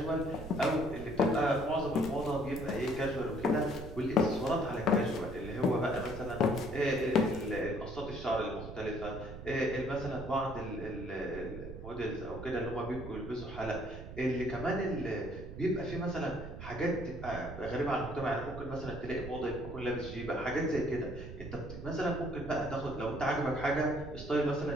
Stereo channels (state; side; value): noise; right; rumble, 10 dB below the sound